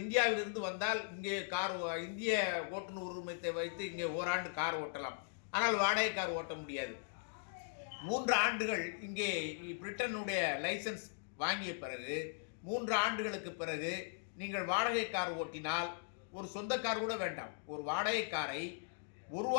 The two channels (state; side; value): silent; right; digital silence